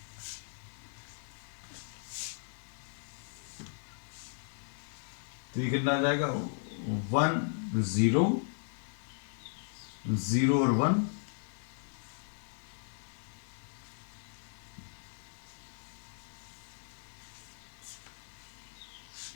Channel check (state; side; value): silent; right; digital silence